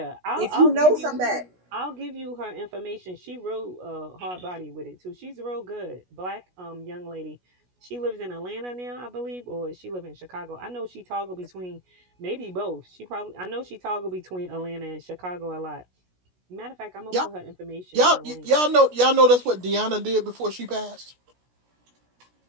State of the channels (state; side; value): late; left; 16 ms